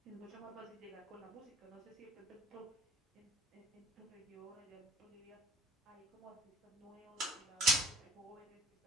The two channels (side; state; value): both; normal; correlation 0.48